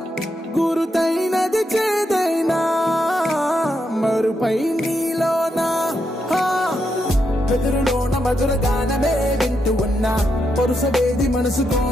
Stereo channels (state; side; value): normal; both; correlation 0.82